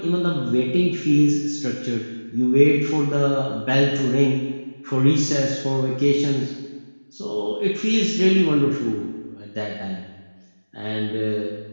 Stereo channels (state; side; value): inverted; both; correlation -1.00